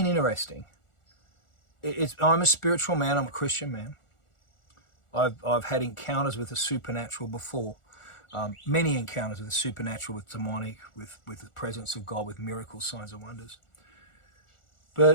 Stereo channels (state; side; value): late; right; 1.4 ms